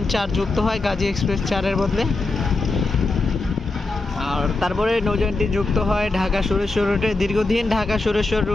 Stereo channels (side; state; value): right; quieter; 3.3 dB